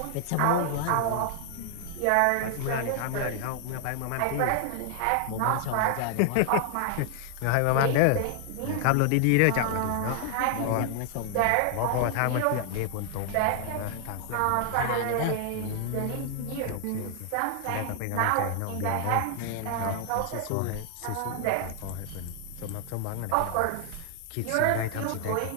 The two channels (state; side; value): different; both; correlation 0.00